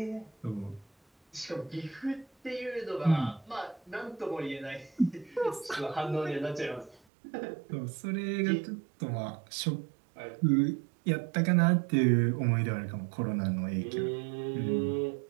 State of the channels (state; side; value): drops out; left; at 7.0 s